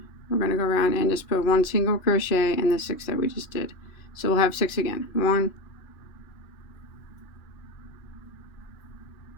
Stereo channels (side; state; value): right; late; 2.4 ms